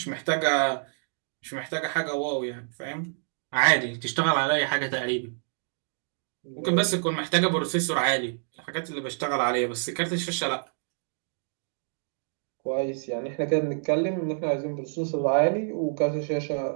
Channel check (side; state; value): left; silent; digital silence